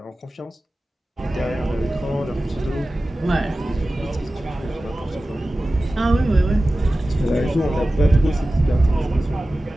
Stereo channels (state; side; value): normal; both; correlation 0.96